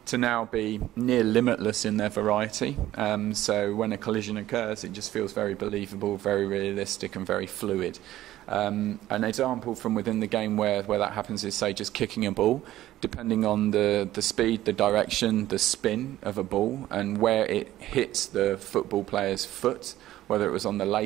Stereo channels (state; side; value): quieter; left; 14.4 dB